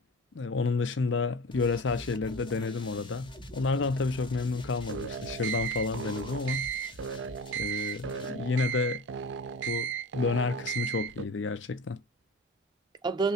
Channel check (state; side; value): normal; both; correlation 0.35